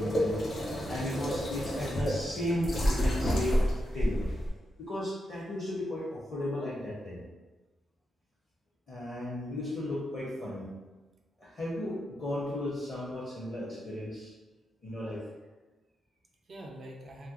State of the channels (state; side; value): normal; both; correlation 0.86